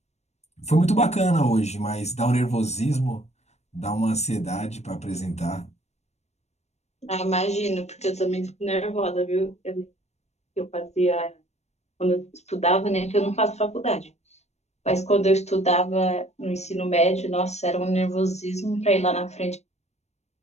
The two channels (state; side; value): late; right; 0.32 ms